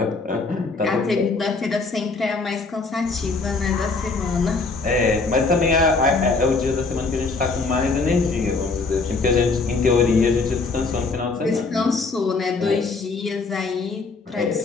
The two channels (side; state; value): right; quieter; 4.0 dB